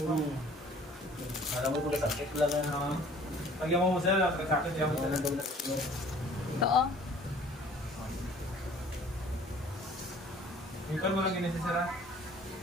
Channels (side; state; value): both; normal; correlation 0.53